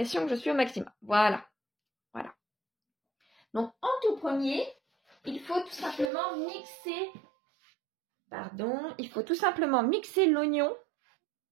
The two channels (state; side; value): drops out; left; at 6.1 s